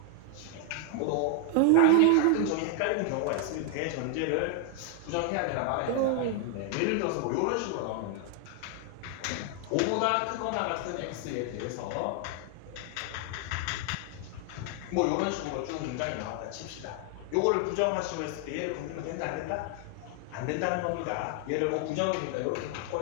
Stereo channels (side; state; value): both; different; correlation 0.00